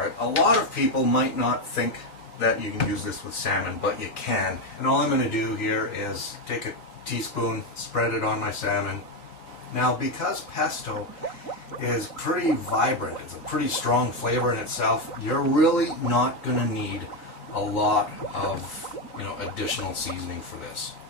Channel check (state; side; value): late; right; 3.9 ms